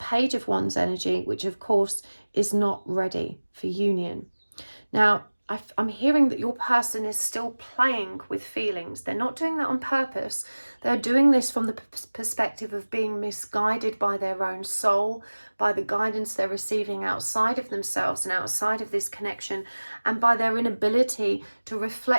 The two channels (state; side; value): inverted; both; correlation -1.00